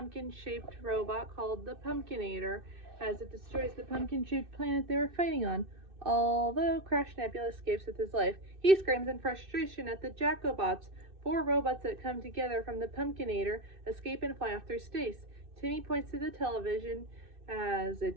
robot called the Pumpkinator as it destroys the pumpkin-shaped planet they were fighting on. Although Crash Nebula escapes with his life, he screams in frustration at the Jacobots, four robots that come together from the Pumpkinator, escape and fly off through space. Timmy points to the television as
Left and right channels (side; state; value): left; late; 2.6 ms